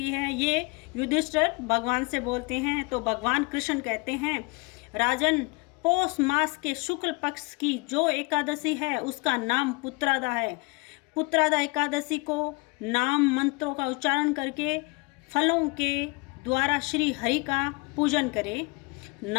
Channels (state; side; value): quieter; right; 28.4 dB